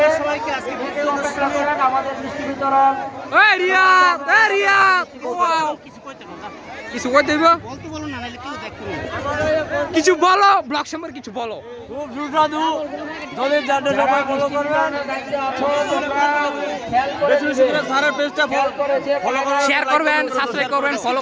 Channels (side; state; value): both; identical; correlation 1.00